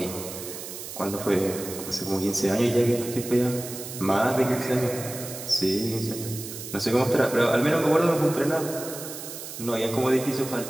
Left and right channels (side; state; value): right; noise; hiss, 10 dB below the sound